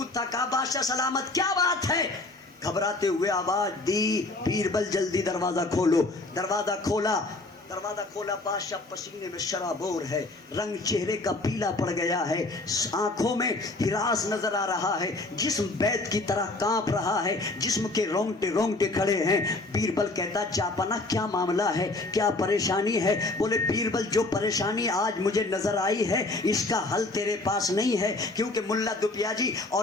تھا. کہا بادشاہ سلامت, کیا بات ہے؟ گھبراتے ہوئے آواز دی, بیربل جلدی دروازہ کھولو. دروازہ کھولا, دروازہ کھولا, بادشاہ پسینے میں شرابور ہے, رنگ چہرے کا پیلا پڑ گیا ہے, آنکھوں میں ہراس نظر آ رہا ہے, جسم بیت کی طرح کانپ رہا ہے, جسم کے رونگٹے رونگٹے کھڑے ہیں. بیربل کہتا جاپنا کیا معاملہ ہے, کیا پریشانی ہے؟ بولے بیربل جو پریشانی آج مجھے نظر آئی ہے اس کا حل تیرے پاس نہیں ہے, کیونکہ ملا دپیا جی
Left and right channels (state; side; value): quieter; right; 3.0 dB